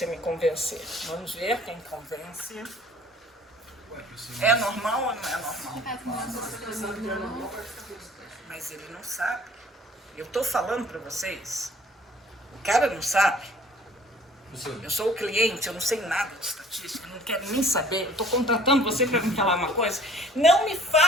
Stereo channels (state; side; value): normal; both; correlation 0.53